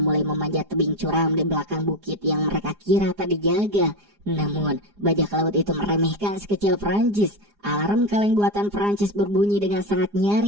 mulai memanjat tebing curam di belakang bukit yang mereka kira tak dijaga. Namun, bajak laut itu meremehkan sekecil Prancis. Alarm kaleng buatan Prancis berbunyi dengan sangat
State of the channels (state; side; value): late; left; 4.9 ms